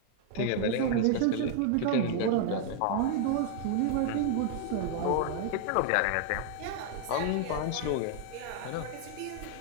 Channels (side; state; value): both; different; correlation 0.00